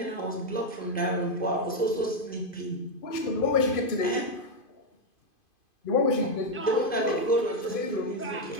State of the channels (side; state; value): right; late; 2.5 ms